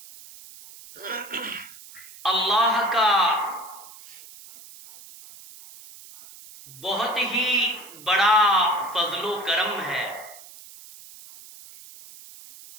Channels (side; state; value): right; noise; hiss, 19 dB below the sound